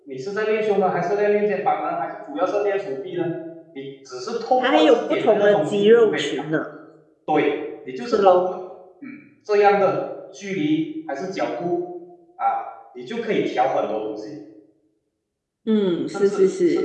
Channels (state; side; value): identical; both; correlation 1.00